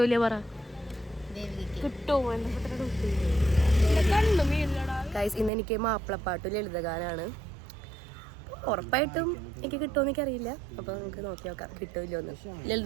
പറ. ഗൈസ്, ഇന്ന് എനിക്ക് മാപ്പിളപ്പാട്ട് ലളിതഗാനാണ്. ഉറപ്പായിട്ടും എനിക്ക് കിട്ടുമെന്ന് എനിക്കറിയില്ല. അപ്പോൾ നമുക്ക് നോക്കി നോക്കാം കിട്ടുമല്ലോ എന്ന്.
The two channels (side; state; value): left; drops out; at 5.5 s